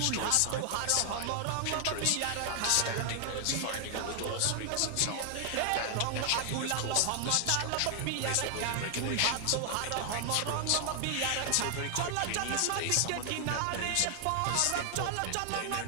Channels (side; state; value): both; different; correlation 0.00